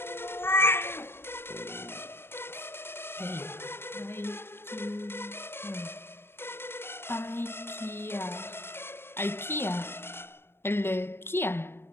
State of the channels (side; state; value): right; late; 0.11 ms